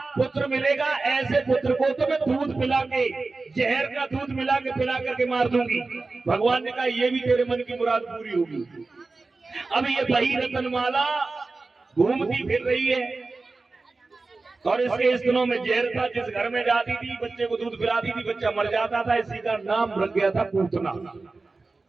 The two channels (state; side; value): quieter; left; 3.7 dB